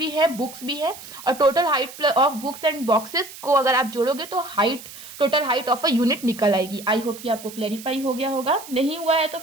है, बुक्स भी है, और total height of books and boxes को अगर आप जोड़ोगे तो height, total height of a unit निकल आएगी। आई होप कि आपको क्लैरिफाई हो गया होगा। नहीं हुआ है तो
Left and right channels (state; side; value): noise; right; hiss, 15 dB below the sound